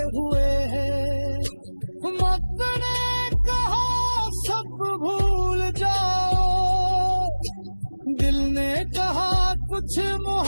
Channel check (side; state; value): both; inverted; correlation -1.00